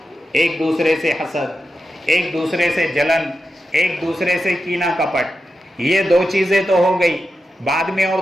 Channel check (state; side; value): normal; both; correlation 0.90